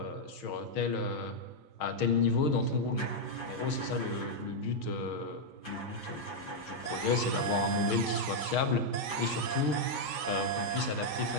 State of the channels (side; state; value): right; late; 6.4 ms